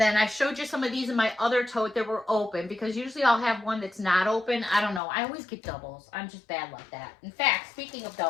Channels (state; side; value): drops out; right; at 5.0 s